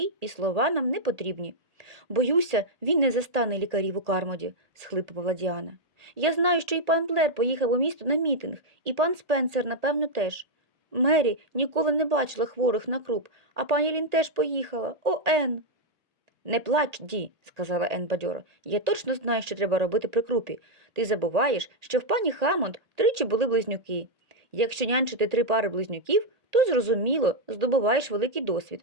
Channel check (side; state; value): left; late; 1.8 ms